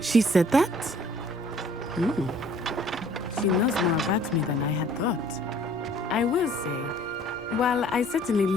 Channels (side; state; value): both; normal; correlation 0.55